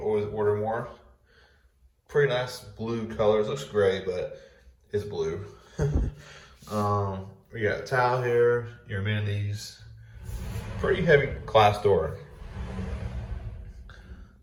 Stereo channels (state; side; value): identical; both; correlation 1.00